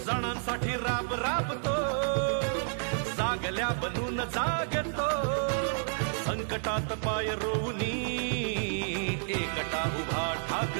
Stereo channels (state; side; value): silent; left; digital silence